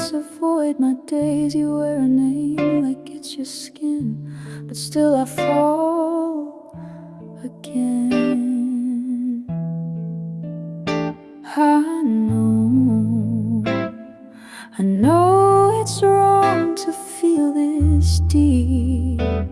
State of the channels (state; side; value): identical; both; correlation 1.00